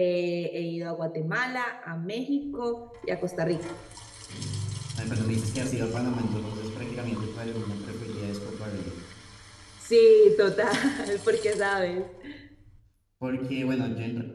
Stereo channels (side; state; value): both; identical; correlation 1.00